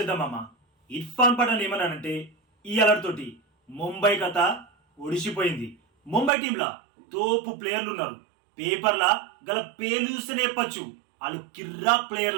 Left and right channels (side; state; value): left; drops out; at 6.3 s